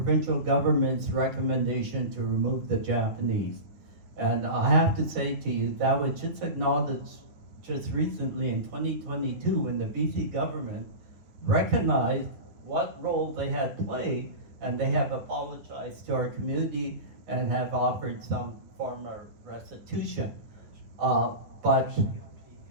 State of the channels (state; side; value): late; left; 9.7 ms